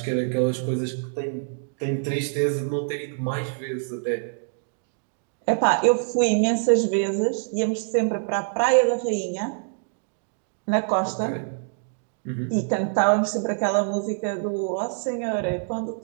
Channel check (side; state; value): left; silent; digital silence